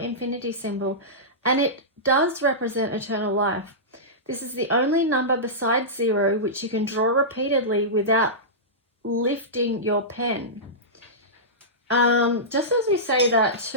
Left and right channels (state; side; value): normal; both; correlation -0.16